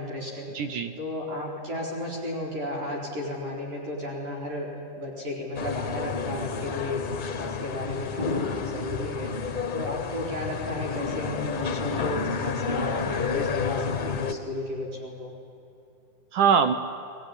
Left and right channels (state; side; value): late; left; 10 ms